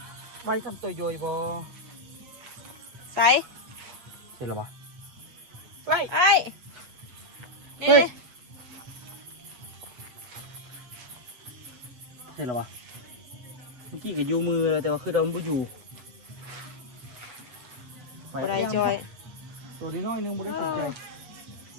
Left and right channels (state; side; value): late; left; 8.1 ms